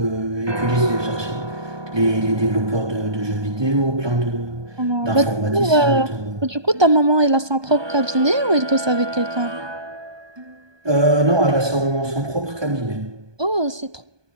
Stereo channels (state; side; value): late; left; 1.2 ms